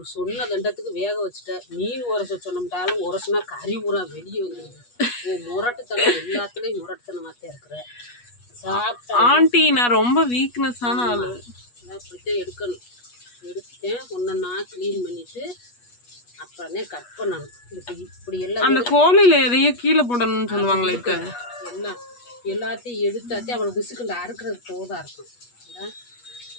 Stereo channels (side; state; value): right; late; 8.3 ms